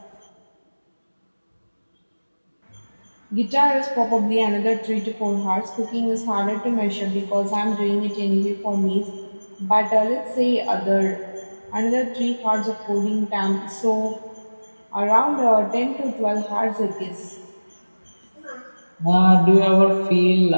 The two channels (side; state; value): both; inverted; correlation -1.00